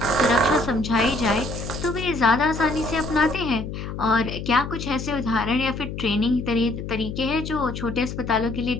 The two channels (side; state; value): left; noise; hum, 7 dB below the sound